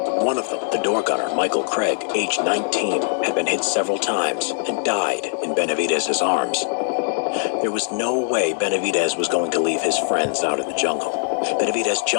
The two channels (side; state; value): right; silent; digital silence